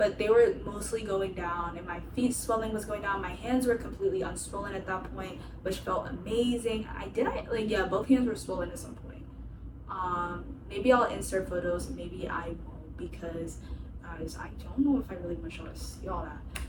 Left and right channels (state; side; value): identical; both; correlation 1.00